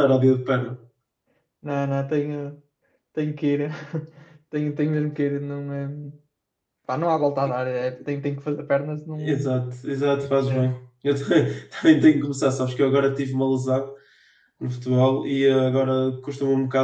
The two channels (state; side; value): identical; both; correlation 1.00